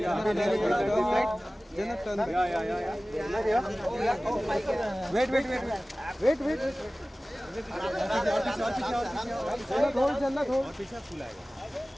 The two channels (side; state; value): both; normal; correlation 0.97